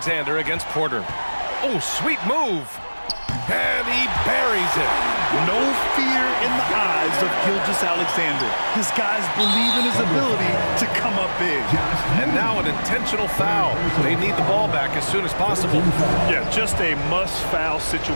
against Porter. Oh, sweet move. And he buries it. No fear in the eyes of Gilgeous-Alexander. His guys believe in his ability to come up big. And now an intentional foul. They need the ball back as soon as possible. Yeah, just a must-foul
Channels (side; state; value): both; inverted; correlation -1.00